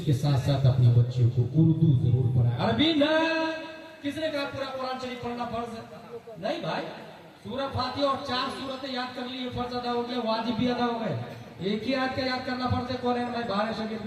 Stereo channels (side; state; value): both; identical; correlation 1.00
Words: के साथ साथ अपनी बच्चियों को उर्दू जरूर पढ़ाए, अरबी न। किसने कहा पूरा कुरान शरीफ पढ़ना फर्ज है? नहीं भाई, सूरह फातिहा और 4 सूरतें याद कर ली, फर्ज अदा हो गया, वाजिब भी अदा हो गए। एक ही आयत का याद करना फर्ज है, कुरान में 12 शरीयत